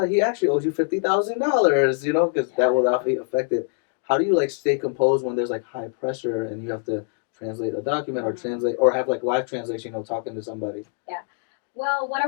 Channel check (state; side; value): silent; right; 63 dB below the other